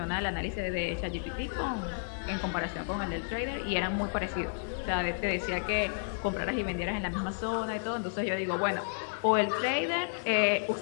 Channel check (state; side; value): silent; right; digital silence